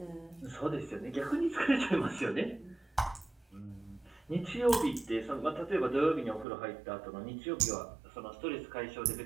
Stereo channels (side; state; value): left; drops out; at 6.5 s